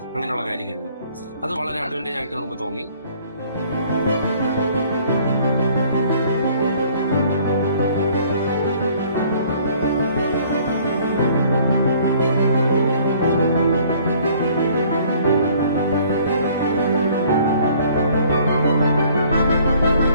അങ്ങനെയുള്ള കാര്യങ്ങളിൽ. അത് വളരെ അഡ്വാൻറ്റേജ് ആയിട്ട് നമുക്ക് തോന്നി.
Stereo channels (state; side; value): inverted; both; correlation -0.57